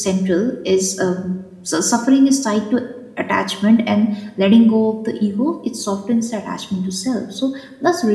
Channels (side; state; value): both; identical; correlation 1.00